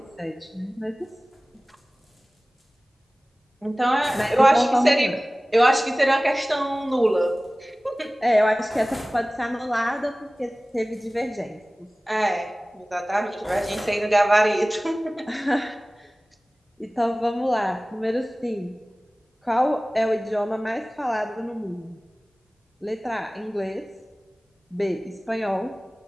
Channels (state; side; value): normal; both; correlation 0.98